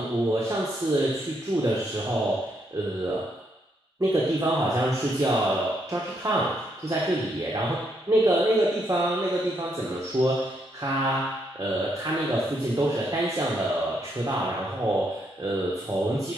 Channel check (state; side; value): normal; both; correlation 0.76